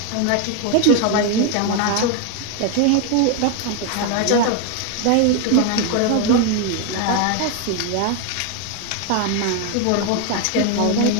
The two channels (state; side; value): different; both; correlation 0.01